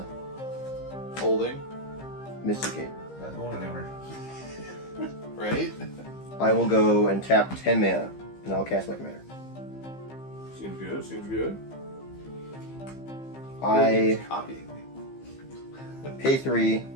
Holding, Mysticate. Not going anywhere. right? I will go and tap 10 mana, and I'll cast my commander. Seems good, seems good. I It's copying me. pay 3.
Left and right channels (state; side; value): late; right; 15 ms